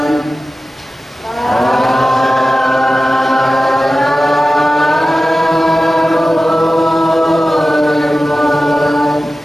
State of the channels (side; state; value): both; normal; correlation 0.95